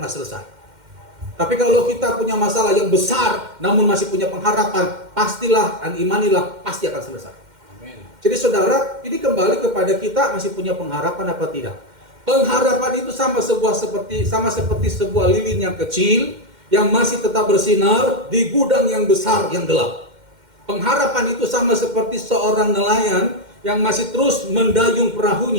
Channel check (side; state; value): left; late; 2.1 ms